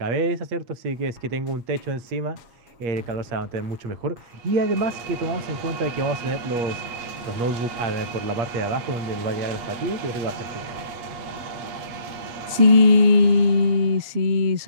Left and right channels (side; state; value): left; late; 8.3 ms